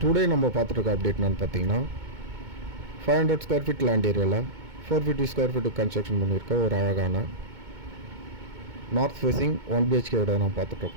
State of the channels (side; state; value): left; late; 2.2 ms